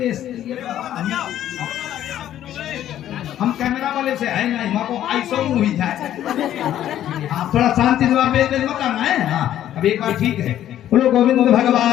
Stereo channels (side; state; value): right; quieter; 11.8 dB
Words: हम कैमरा वाले से है नहीं, माँ को ऐसा ही जाए। हाँ थोड़ा शांति से बेच मत करना है। हाँ अब एक बार ठीक है, बोलो गोविंद